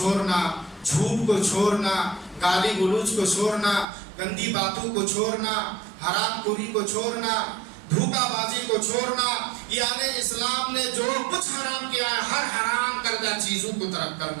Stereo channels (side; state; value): left; drops out; at 3.9 s